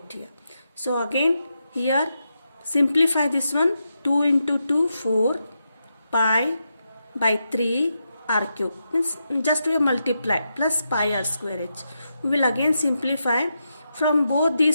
here. So again here simplify this one. 2 into 2 4 pi by 3 r cube. Means just we multiply plus pi r square h. We will again simplify. From both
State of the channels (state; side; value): inverted; both; correlation -0.85